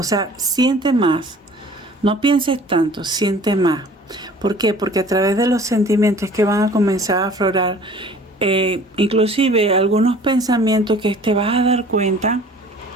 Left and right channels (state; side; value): normal; both; correlation 0.49